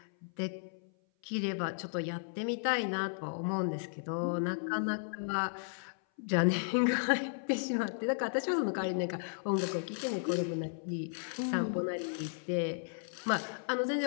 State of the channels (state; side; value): silent; right; 55 dB below the other